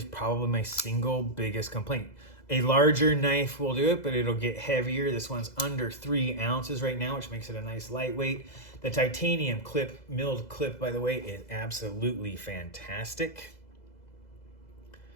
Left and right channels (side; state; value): right; late; 2.0 ms